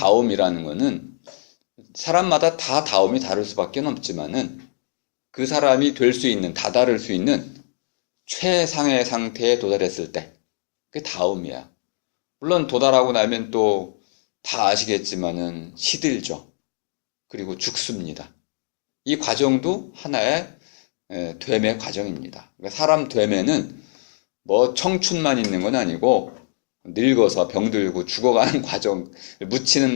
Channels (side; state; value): right; silent; digital silence